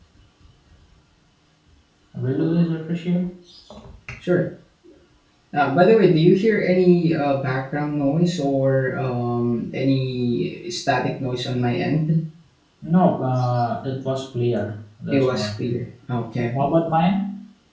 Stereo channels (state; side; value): identical; both; correlation 1.00